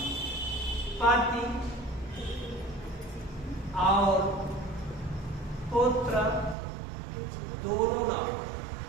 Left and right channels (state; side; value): drops out; left; at 6.6 s